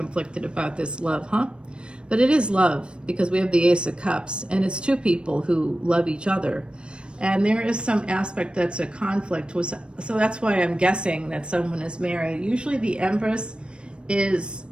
about this love, huh? But it is love because we have the Ace of Cups, and it's 2 people who love each other. And there is some aspect that's a conflict. So that's why I'm guessing that someone is married. Usually the Empress does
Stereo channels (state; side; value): late; left; 0.056 ms